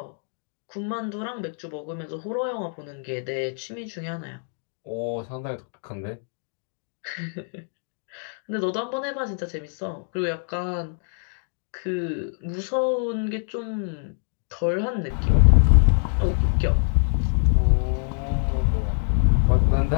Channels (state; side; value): silent; right; 62 dB below the other